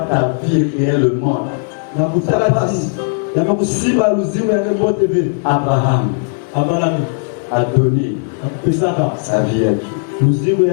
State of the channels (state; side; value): silent; right; digital silence